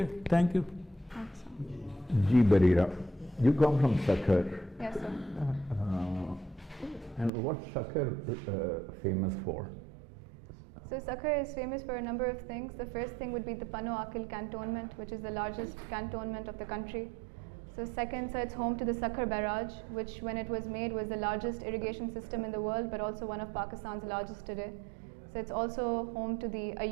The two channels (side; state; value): left; drops out; at 7.3 s